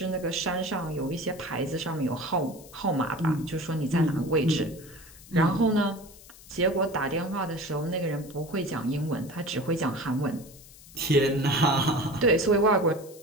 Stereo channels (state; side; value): noise; left; hiss, 21 dB below the sound